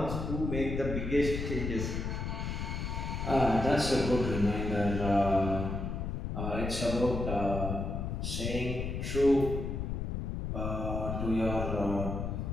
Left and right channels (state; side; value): noise; left; rumble, 3 dB below the sound